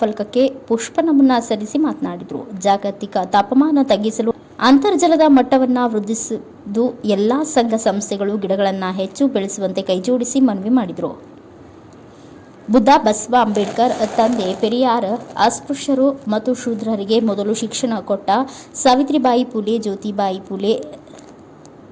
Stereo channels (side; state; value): both; identical; correlation 1.00